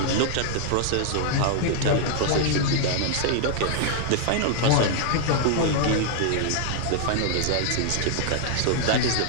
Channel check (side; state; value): both; different; correlation -0.01